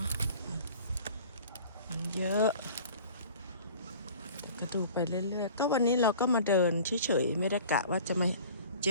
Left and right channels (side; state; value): both; inverted; correlation -0.45